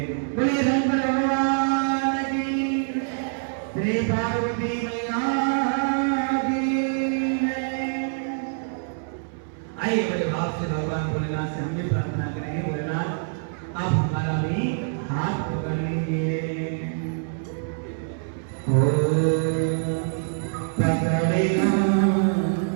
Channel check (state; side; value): silent; left; 62 dB below the other